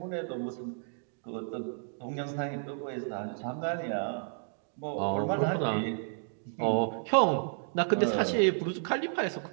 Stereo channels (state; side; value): silent; left; digital silence